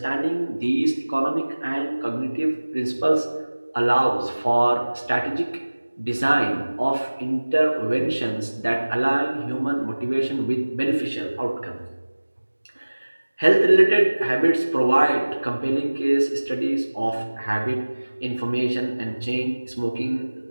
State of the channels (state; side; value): inverted; both; correlation -1.00